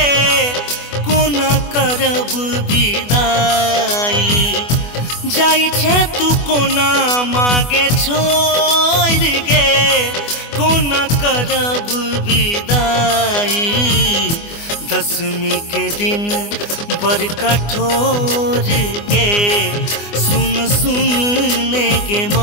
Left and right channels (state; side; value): late; right; 24 ms